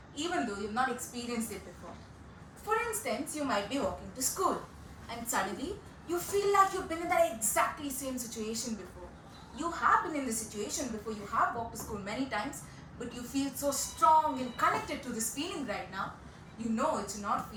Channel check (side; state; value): both; identical; correlation 1.00